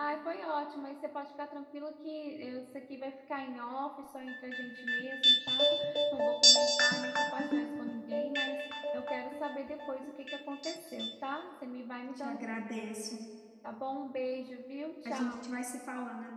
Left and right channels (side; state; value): both; identical; correlation 1.00